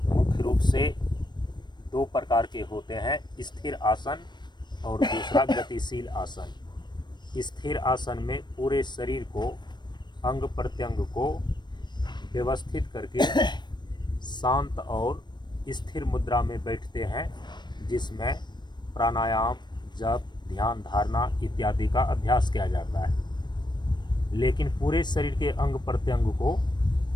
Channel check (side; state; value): right; late; 0.22 ms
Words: मुख्य रूप से दो प्रकार के होते हैं, स्थिर आसन और दूसरा गतिशील आसन। स्थिर आसन में पूरे शरीर को, अंग प्रत्यंग को व्यवस्थित करके शांत और स्थिर मुद्रा में बैठते हैं, जिसमें प्राणायाम, जप, ध्यान धारणा इत्यादि का अभ्यास किया जाता है। लेकिन पूरे शरीर के अंग प्रत्यंग को